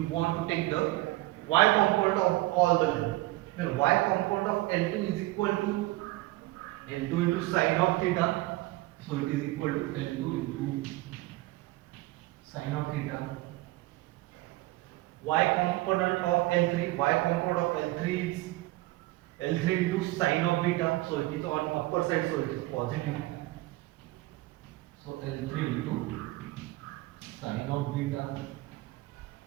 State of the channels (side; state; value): left; quieter; 19.1 dB